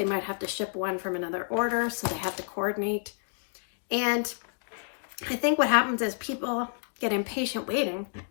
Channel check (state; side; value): silent; right; digital silence